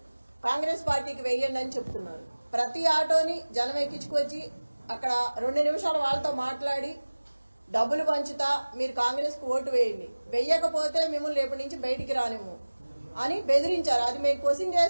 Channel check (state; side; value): inverted; both; correlation -1.00